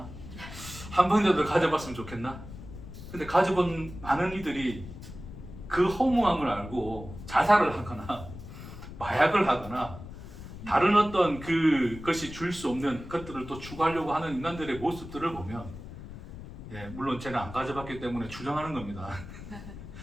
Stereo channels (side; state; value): left; noise; rumble, 13 dB below the sound